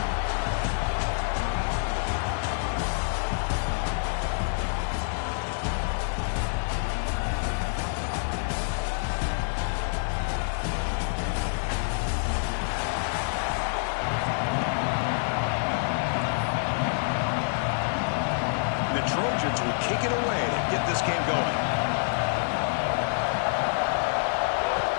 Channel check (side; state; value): right; silent; digital silence